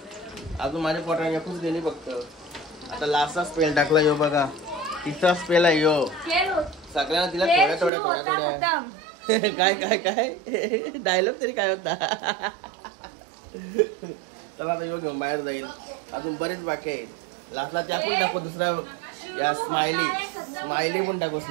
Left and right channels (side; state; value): left; drops out; at 7.9 s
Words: अजून माझ्या पोटाने एकूच गेली फक्त. आता लास्टचा स्पेल टाकला. यो बघा तिसरा स्पेल आहे यो. सगळ्यांना तिला थोड्या काय काय काय डायलॉग तरी काय होता. चला आता यो घेऊन बाहेर जाईल. अजून बरेच बाकी आहे. लास्टला त्या पण टाकू. दुसरा या स्माइली पण टाकू.